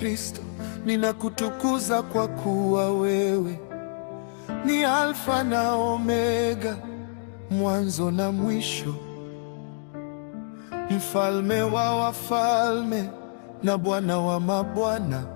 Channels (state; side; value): silent; right; digital silence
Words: ninakutukuza kwa kuwa wewe ni Alfa na Omega, mwanzo na mwisho, mfalme wa wafalme na Bwana wa mabwana.